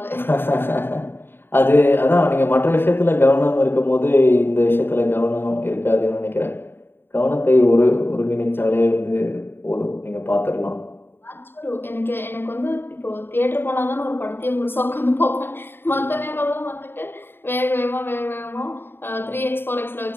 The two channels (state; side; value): late; right; 0.10 ms